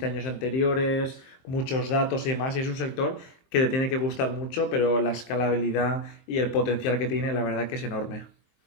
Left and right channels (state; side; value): late; right; 23 ms